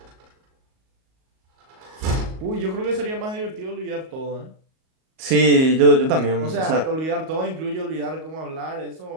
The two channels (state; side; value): late; left; 38 ms